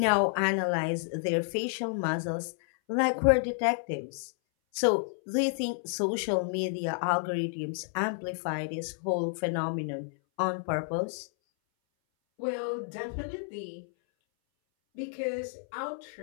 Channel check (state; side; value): silent; right; 58 dB below the other